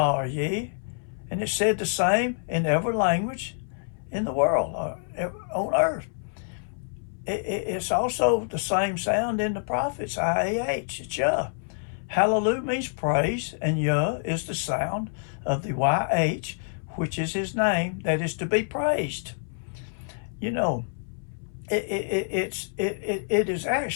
or Ye. And it's said the same in every language in the world, on earth. It's also the same sound in the prophets, I-A-H, it's Yuh. Hallelujah means praise, and Yuh is the sound of the Y-H, which is his name that is to be praised. It is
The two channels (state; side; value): silent; right; 60 dB below the other